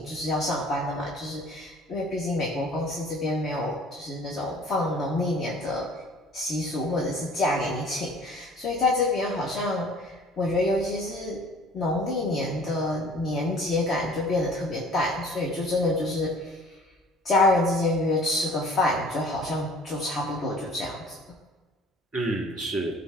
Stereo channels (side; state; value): both; normal; correlation 0.50